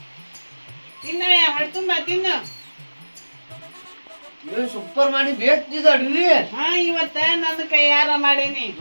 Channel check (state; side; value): inverted; both; correlation -1.00